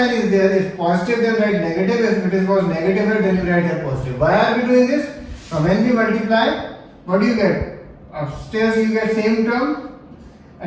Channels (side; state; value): both; identical; correlation 1.00